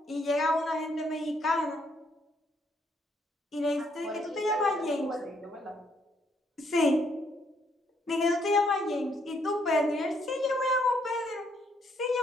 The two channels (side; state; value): both; normal; correlation 0.71